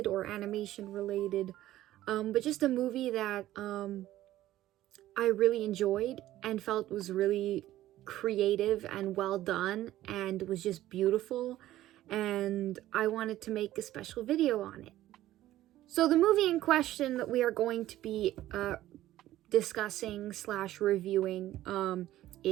or animation related, but just a movie that I really enjoyed and felt was really creative and well done and was just beautiful, and I wanted to make a special video on it. So the movie in question that we are going to be discussing / reviewing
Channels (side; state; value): left; quieter; 14.4 dB